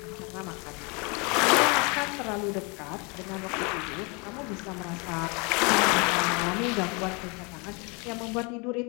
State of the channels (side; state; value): right; quieter; 30.9 dB